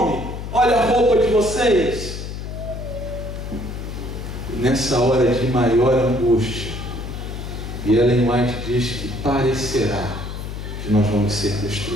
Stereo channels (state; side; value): noise; left; hum, 7 dB below the sound